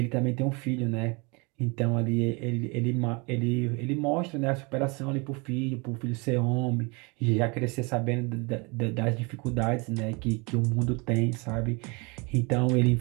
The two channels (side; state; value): left; quieter; 29.2 dB